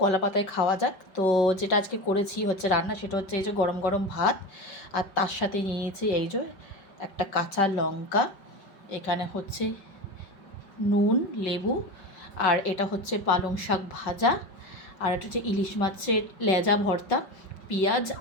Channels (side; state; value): right; late; 5.4 ms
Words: কলা পাতায় খাওয়া যাক। তো যেটা আজকে করেছি হচ্ছে রান্না, সেটা হচ্ছে এই যে গরম গরম ভাত, আর তার সাথে নিয়েছি এই যে একটা কাঁচা লঙ্কা, এখানে হচ্ছে নুন, লেবু, আর এটা হচ্ছে পালং শাক ভাজা, আর এটা হচ্ছে ইলিশ মাছের লেজা ভর্তা, পেঁয়াজ